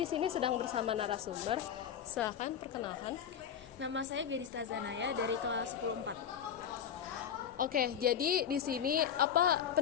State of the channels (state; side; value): quieter; right; 8.6 dB